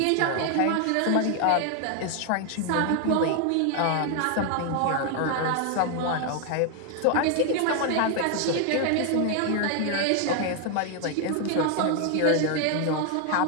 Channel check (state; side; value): different; both; correlation 0.00